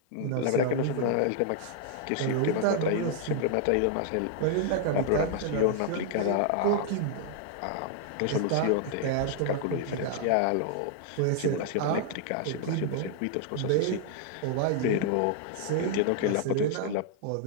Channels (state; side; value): different; both; correlation -0.01